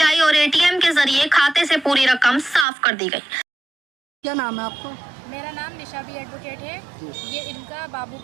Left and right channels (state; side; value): drops out; left; at 2.7 s